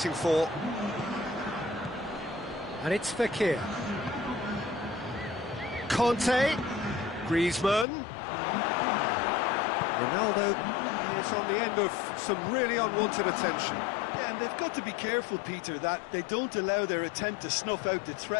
for. And it's Fekir. Conte. Griezmann. Ronaldo is on the end of some really unwanted attention. Yeah, and they've got to be careful, Peter, that they don't allow their attempt to snuff out the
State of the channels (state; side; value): drops out; right; at 7.9 s